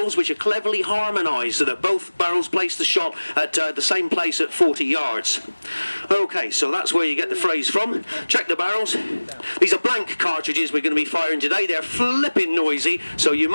which are cleverly harmonised so that both barrels place the shot at the same place at 40 yards. Okay, so that's where you get the phrase from. Check the barrels. These are blank cartridges we're going to be firing today. They're flipping noisy, so you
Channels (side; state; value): both; inverted; correlation -1.00